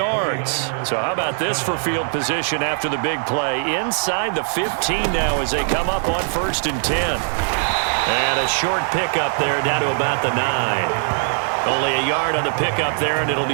So how about this for field position after the big play? Inside the 15 now as they come up on 1st and 10. And a short pickup there down to about the 9. Only a yard on the pickup there, and it'll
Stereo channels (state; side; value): silent; left; digital silence